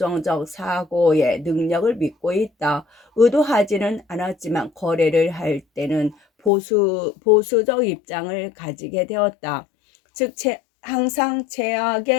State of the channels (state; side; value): drops out; right; at 6.5 s